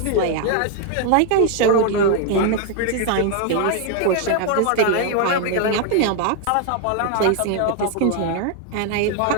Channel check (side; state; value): both; different; correlation 0.00